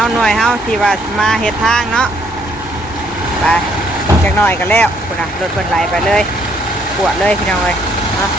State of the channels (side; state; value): both; normal; correlation 0.68